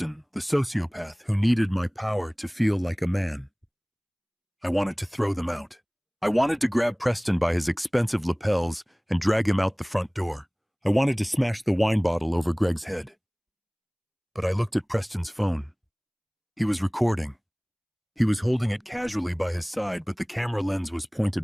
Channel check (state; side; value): identical; both; correlation 1.00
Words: the sociopath who needed my power to feel like a man. I wanted to throw them out. I wanted to grab Preston by his expensive lapels and drag him out the front door. I wanted to smash the wine bottle over Greg's head. But I looked at Preston's phone. He was recording. He was holding it casually by his side, but the camera lens was